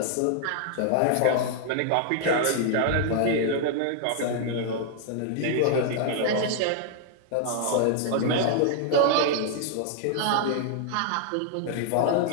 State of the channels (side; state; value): both; different; correlation 0.00